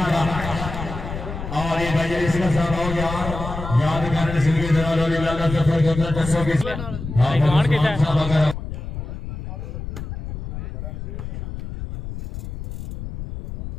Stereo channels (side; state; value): left; noise; rumble, 8 dB below the sound